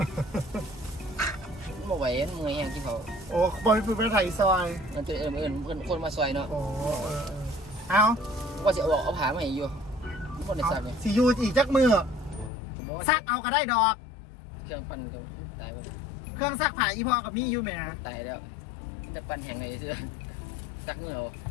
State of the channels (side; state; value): right; drops out; at 12.5 s